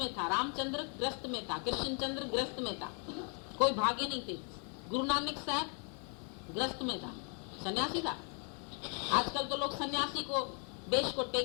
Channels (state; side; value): quieter; right; 39.8 dB